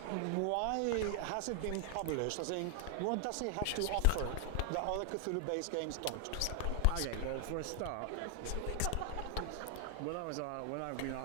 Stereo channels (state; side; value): different; both; correlation 0.00